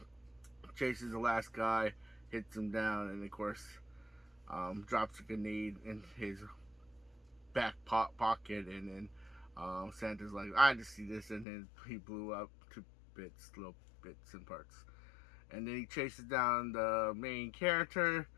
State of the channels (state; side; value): drops out; right; at 11.5 s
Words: chases the last guy, hits him down, and of course, drops a grenade in his back pocket. And then Santa's like, I just see this, and then he blew up to little bits and parts. And then he chases down the main character,